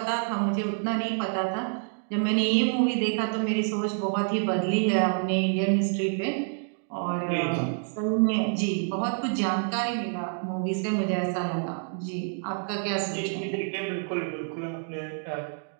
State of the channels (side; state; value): left; silent; 60 dB below the other